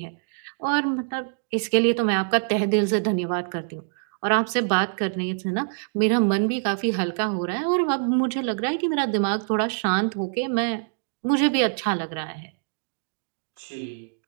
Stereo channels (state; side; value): silent; left; digital silence